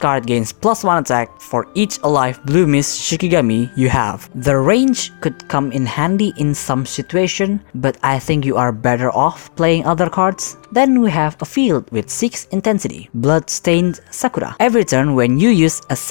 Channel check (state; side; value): silent; right; digital silence